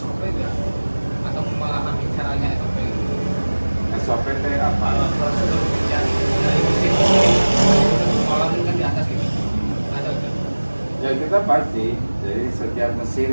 nggak? Atau memahami caranya SOP? SOP teh apa? Prosedur kerja dari mesin kolam kan di atas ini ada nggak? Ya kita pasti. Jadi setiap mesin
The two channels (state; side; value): inverted; both; correlation -1.00